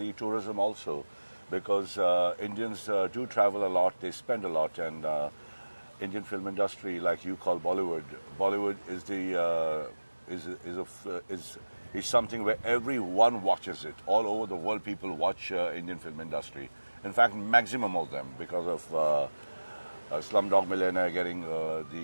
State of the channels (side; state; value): both; inverted; correlation -1.00